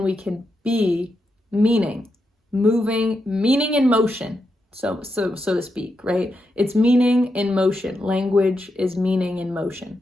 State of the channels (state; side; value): normal; both; correlation 0.85